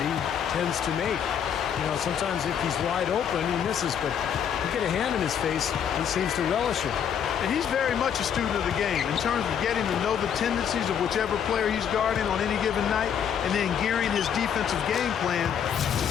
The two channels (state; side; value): quieter; right; 8.3 dB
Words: tends to make. You know, sometimes if he's wide open, he misses, but you get a hand in his face, he seems to relish it. And he's very much a student of the game in terms of getting to know the tendencies of whichever player he's guarding on any given night and then gearing his defensive game plan to